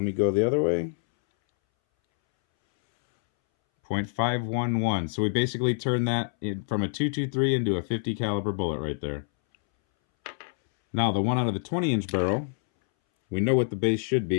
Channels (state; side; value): silent; right; 61 dB below the other